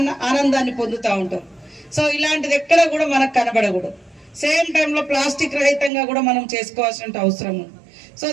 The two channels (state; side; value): drops out; left; at 5.9 s